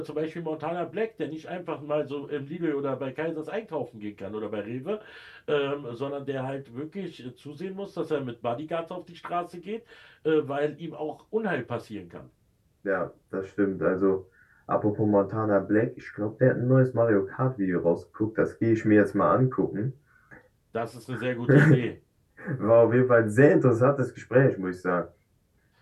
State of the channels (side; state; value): both; identical; correlation 1.00